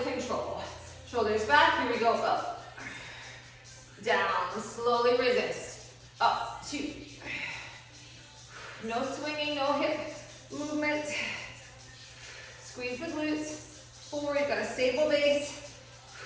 control. Shoulders back, here we go, up, down, slowly resist, up, 2, no swinging, no hip movement, squeeze the glutes, 4, you've got a stable base,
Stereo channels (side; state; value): both; identical; correlation 1.00